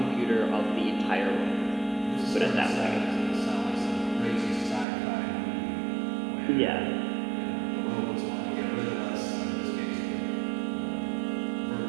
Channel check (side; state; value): left; drops out; at 4.9 s